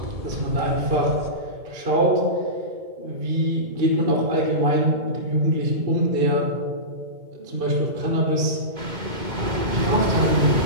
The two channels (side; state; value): left; late; 2.2 ms